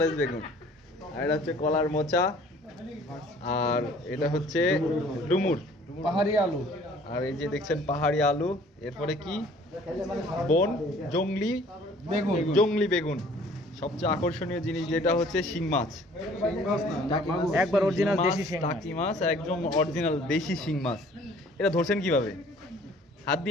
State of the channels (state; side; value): normal; both; correlation 0.54